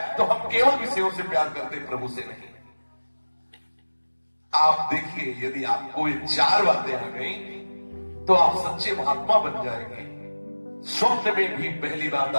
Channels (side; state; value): both; inverted; correlation -1.00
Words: तो हम केवल विषयों से प्यार करते, प्रभु से नहीं। आप देखिए, यदि आपको ये चार बातें आ गई तो आप सच्चे महात्मा बन जाएंगे। स्वप्न में भी पहली बात,